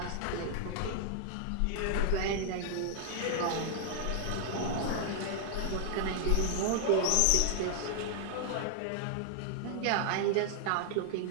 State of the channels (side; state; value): both; different; correlation 0.00